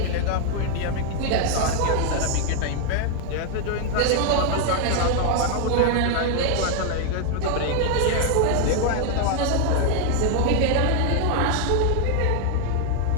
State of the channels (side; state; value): both; different; correlation 0.00